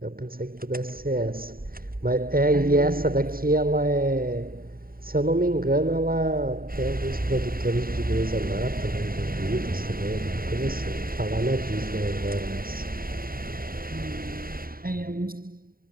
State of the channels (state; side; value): late; left; 0.43 ms